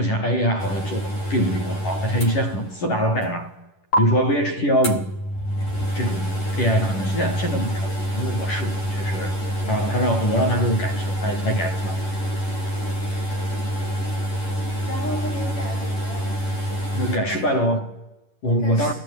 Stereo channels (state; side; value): late; right; 10 ms